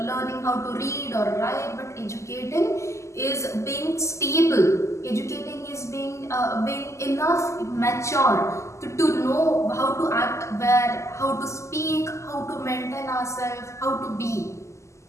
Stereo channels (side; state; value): right; late; 0.14 ms